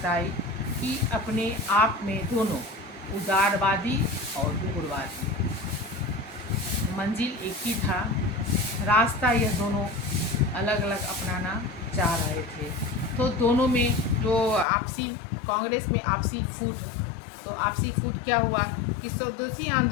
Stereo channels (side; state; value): right; drops out; at 14.7 s